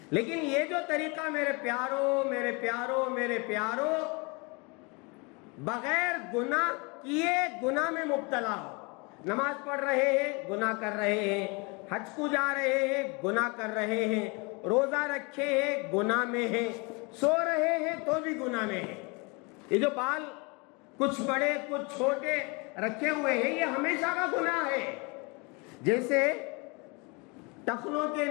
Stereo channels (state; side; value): quieter; right; 29.6 dB